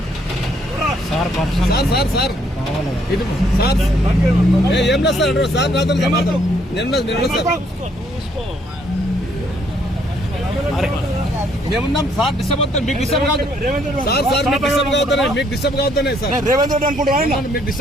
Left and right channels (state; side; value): normal; both; correlation 0.68